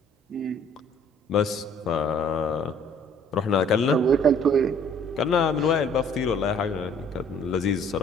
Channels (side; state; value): both; normal; correlation 0.56